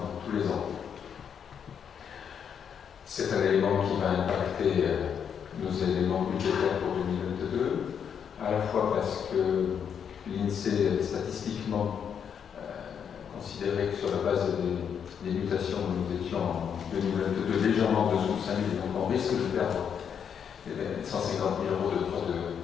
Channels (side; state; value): right; quieter; 7.7 dB